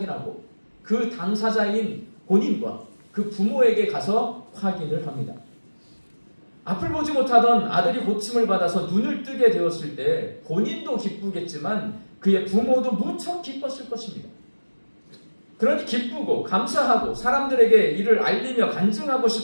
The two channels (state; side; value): inverted; both; correlation -1.00